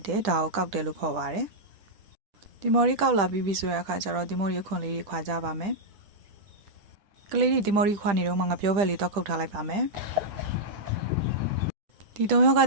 တယ်ဒါကိုကောက်တယ်လို့ခေါ်ပါတယ်ဒီမော်ရီကောက်လာပြီးပြီဆိုတဲ့အခါကျတော့ဒီမော်ရီခွန်လေးတွေခွာကြပါမယ်ကလေးတွေဒီမော်ရီခွာနေတော့မှငါပြောဘက်လေးတော့ခုတ်ထားလိုက်ပါမယ်ဒီတုံရောက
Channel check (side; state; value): left; late; 10 ms